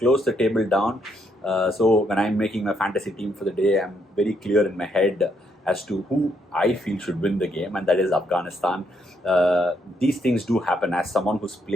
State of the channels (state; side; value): normal; both; correlation 0.74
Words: the table down. So when I'm making my fantasy team for the day, I'm very clear in my head as to who I feel should win the game, and that is Afghanistan. These things do happen. As someone who's